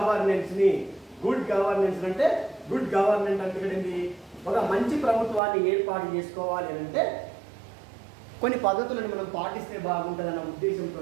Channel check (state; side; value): drops out; left; at 5.4 s